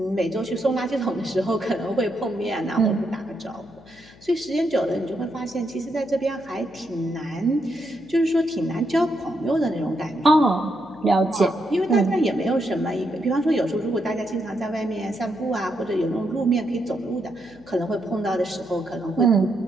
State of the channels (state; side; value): noise; left; hum, 24 dB below the sound